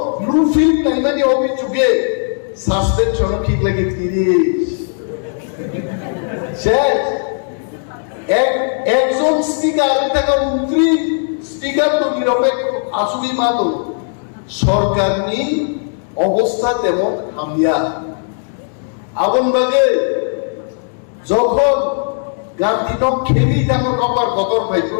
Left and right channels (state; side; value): silent; right; digital silence